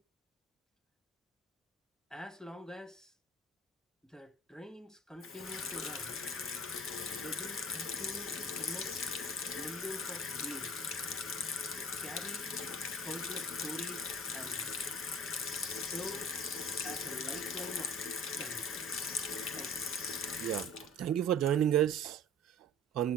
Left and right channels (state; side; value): normal; both; correlation 0.44